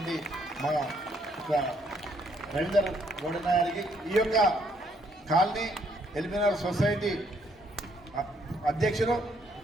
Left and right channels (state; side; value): normal; both; correlation 0.69